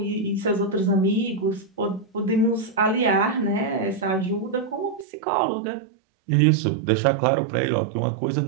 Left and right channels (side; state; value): left; drops out; at 5.1 s